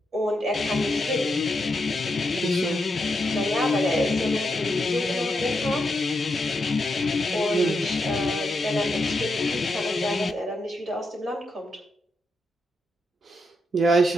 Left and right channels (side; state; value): both; normal; correlation 0.83